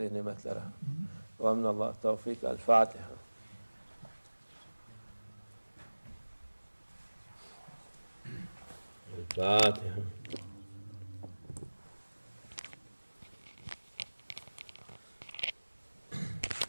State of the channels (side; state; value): both; inverted; correlation -1.00